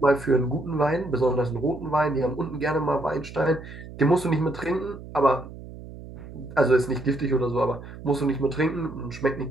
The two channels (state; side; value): noise; right; hum, 14 dB below the sound